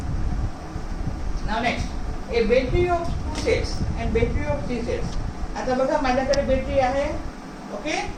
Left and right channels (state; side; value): identical; both; correlation 1.00